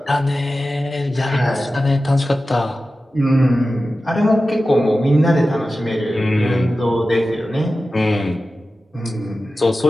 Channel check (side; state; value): both; normal; correlation 0.94